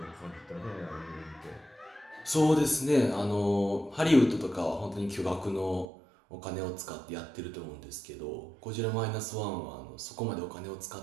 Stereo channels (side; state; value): left; drops out; at 5.9 s